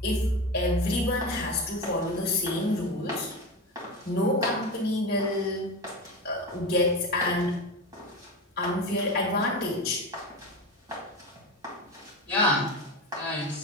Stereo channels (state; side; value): normal; both; correlation 0.23